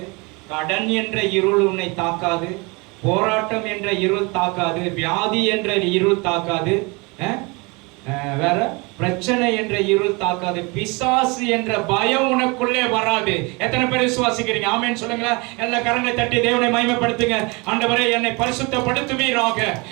கடன் என்ற இருள் உன்னை தாக்காது, போராட்டம் என்ற இருள் தாக்காது, வியாதி என்ற இருள் தாக்காது, வேற பிரச்சனை என்ற இருள் தாக்காது, பிசாசு என்ற பயம் உனக்குள்ளே வராது. எத்தனை பேர் விசுவாசிக்கிறீங்க? ஆமென் சொல்லுங்களேன். எல்லா கரங்களை தட்டி தேவனை மகிமைப்படுத்துங்க. ஆண்டவரே, என்னை பரிசுத்தப்படுத்துவீராக,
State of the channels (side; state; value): left; quieter; 27.9 dB